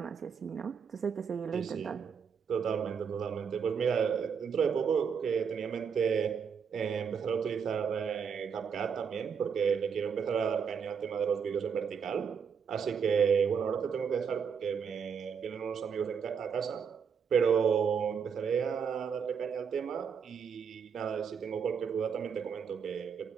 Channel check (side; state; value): left; quieter; 6.7 dB